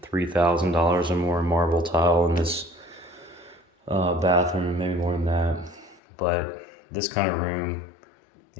$3,000 or more marble tile in this bathroom, maybe more than that. But this kind of room,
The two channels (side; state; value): right; drops out; at 6.0 s